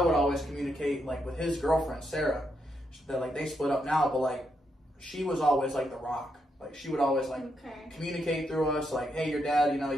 always communicate, like, with his girlfriend, Sarah, that, like, they split up now, but, like, she was always, like, the rock. Like, she would always, like, communicate through us, like, hey, your dad, you know,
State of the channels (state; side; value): normal; both; correlation 0.80